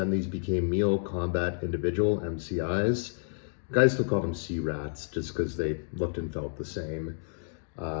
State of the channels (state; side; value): silent; right; digital silence